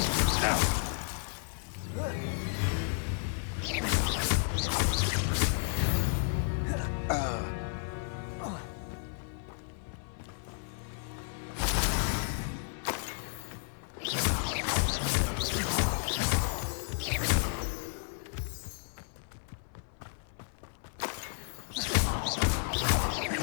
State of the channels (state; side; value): silent; right; 56 dB below the other